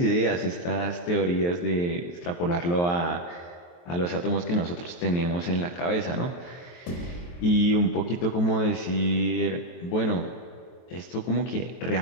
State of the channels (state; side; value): late; right; 23 ms